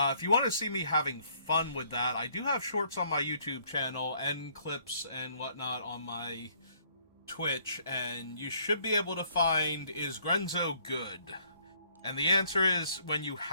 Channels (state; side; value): inverted; both; correlation -0.64